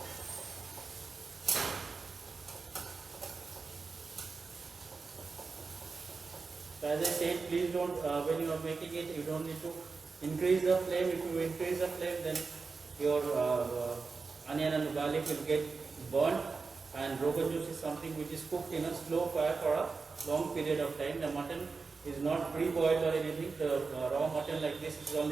So as I said, please don't, when you are making it, you don't need to increase the flame. If you increase the flame, then your onion and garlic will get burnt, and Rogan Josh is something which is cooked in a slow fire for a long period of time. The mutton is not pre-boiled or anything. The raw mutton like this is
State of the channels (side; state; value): left; quieter; 4.5 dB